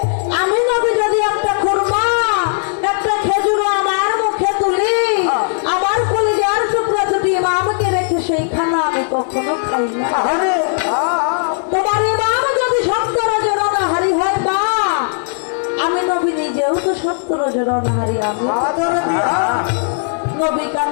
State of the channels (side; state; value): right; silent; 68 dB below the other